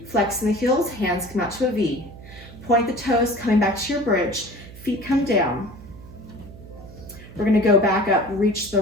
Flexing the heels, hands come out to a V. Point the toes, coming back to your bridge. Feet come down. We're gonna go back up, reach the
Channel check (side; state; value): right; noise; hum, 17 dB below the sound